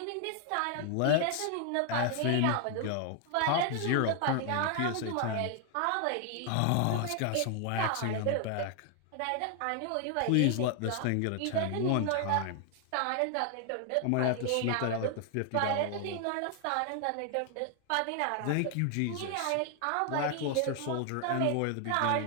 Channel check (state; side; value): different; both; correlation 0.00